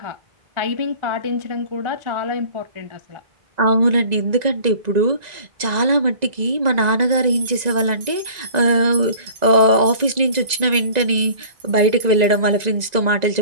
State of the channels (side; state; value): left; late; 1.9 ms